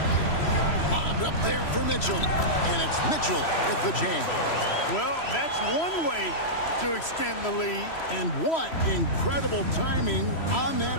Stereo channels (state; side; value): late; right; 3.0 ms